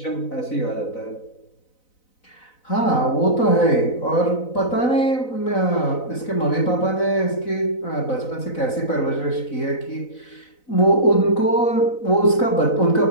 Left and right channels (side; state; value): right; late; 4.0 ms